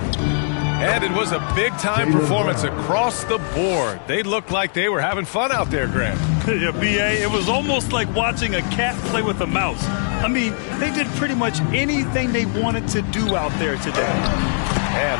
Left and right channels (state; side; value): silent; right; digital silence